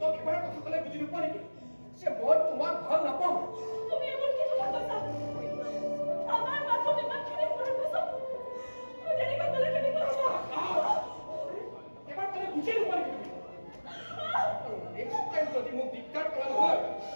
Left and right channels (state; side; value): inverted; both; correlation -1.00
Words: এবাৰ কথা ক'লে বুজি নোপোৱা নেকি যে মই তোমাক ভাল নাপাওঁ তুমি এবাৰ কি কথা কৈছা আমাৰ মাজত ইমানখিনি কৰাৰ পাছত তুমি তেনেকৈ ক'লে কেনেকৈ হ'ব এবাৰ ক'লে বুজি নোপোৱা নেকি তুমি নেক্সট টাইম যদি মোক দিগদাৰ কৰা নহয়